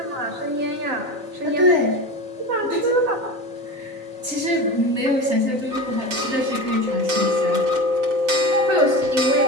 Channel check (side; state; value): left; late; 3.9 ms